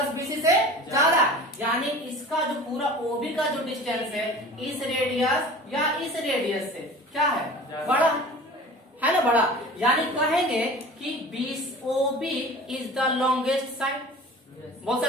BC से ज्यादा, यानी इसका जो पूरा OB का जो डिस्टेंस है इस रेडियस या इस रेडियस से क्या है, बड़ा है ना, बड़ा। यानी कहेंगे कि OB is the longest side, बोल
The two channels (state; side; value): normal; both; correlation 0.40